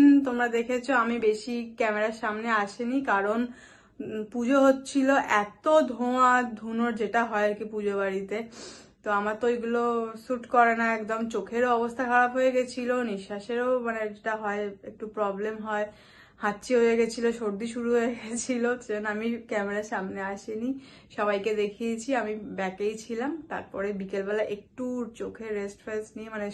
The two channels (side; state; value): both; identical; correlation 1.00